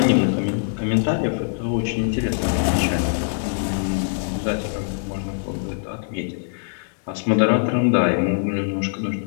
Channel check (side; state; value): right; silent; digital silence